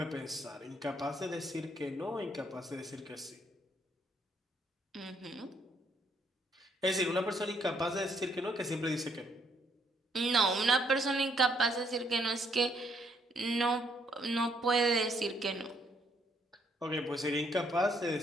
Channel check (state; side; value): normal; both; correlation 0.70